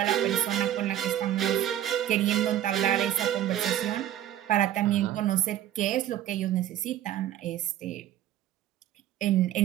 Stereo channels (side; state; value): left; quieter; 11.9 dB